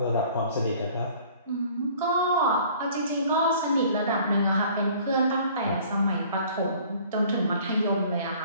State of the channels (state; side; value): inverted; both; correlation -0.52